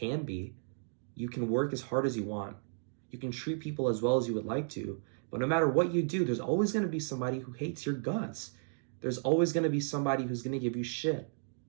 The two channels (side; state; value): left; silent; digital silence